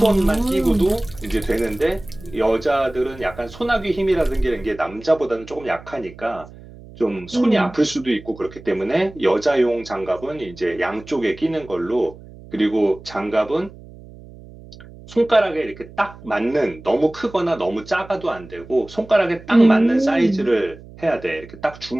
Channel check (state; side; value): noise; right; hum, 19 dB below the sound